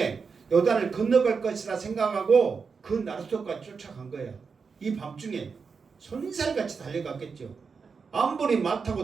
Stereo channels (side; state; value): left; quieter; 5.3 dB